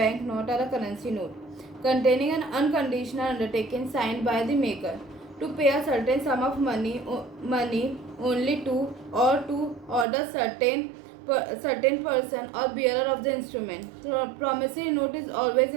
note or a currency note, containing an unconditional undertaking signed by the maker to pay a certain sum of money only to or to order certain person or bearer of the instrument. So promissory note is always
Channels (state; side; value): drops out; left; at 10.1 s